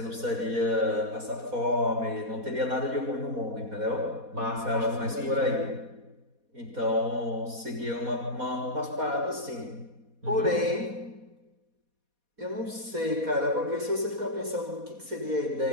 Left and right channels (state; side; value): late; left; 4.2 ms